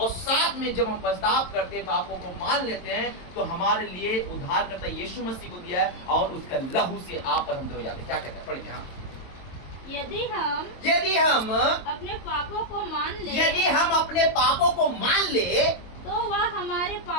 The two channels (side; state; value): right; late; 22 ms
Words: साथ में जब हम पछतावा करते हैं, पापों को मान लेते हैं, तो हमारे लिए उद्धार करता यीशु मसीह को दिया है और उसका लहू से आप और हम धोए जाते हैं। क्या कहता है? पढ़ेंगे हाँ। यदि हम अपने पापों को मान ले, यदि हम अपने पापों को मान ले, तो वह हमारे